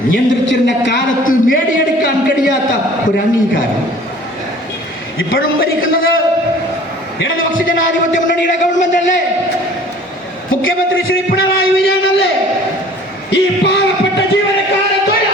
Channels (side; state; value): both; normal; correlation 0.49